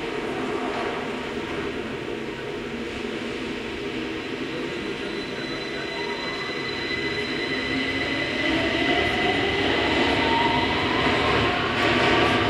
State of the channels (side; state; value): both; identical; correlation 1.00